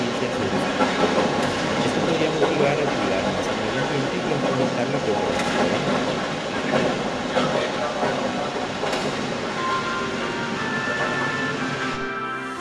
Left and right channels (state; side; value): identical; both; correlation 1.00